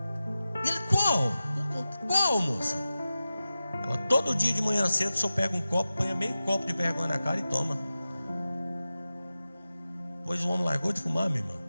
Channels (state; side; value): inverted; both; correlation -0.94